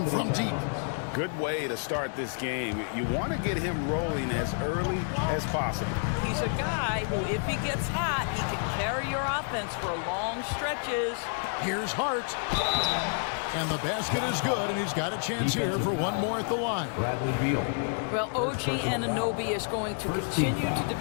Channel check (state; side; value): silent; right; 58 dB below the other